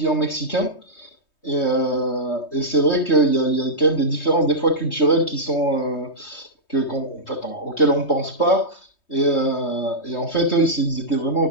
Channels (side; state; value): right; late; 3.2 ms